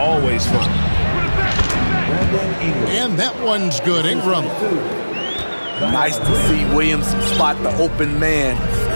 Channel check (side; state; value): both; inverted; correlation -1.00